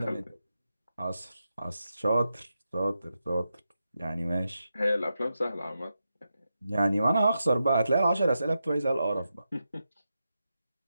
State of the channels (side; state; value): both; inverted; correlation -0.88